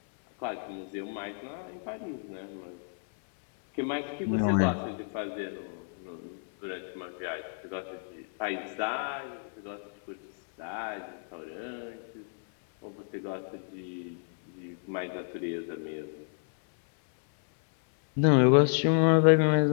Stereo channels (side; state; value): right; silent; 57 dB below the other